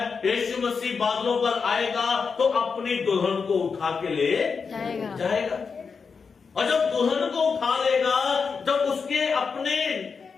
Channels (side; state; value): right; quieter; 5.4 dB